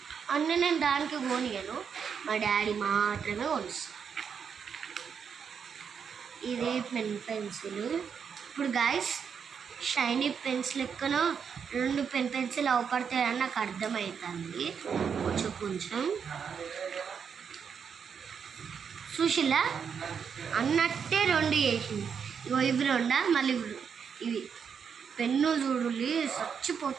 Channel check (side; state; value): left; quieter; 6.8 dB